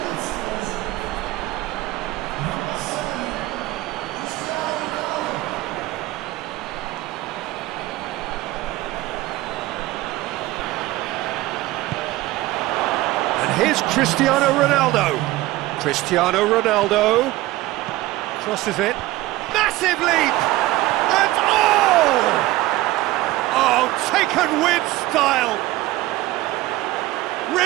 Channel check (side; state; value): left; quieter; 17.5 dB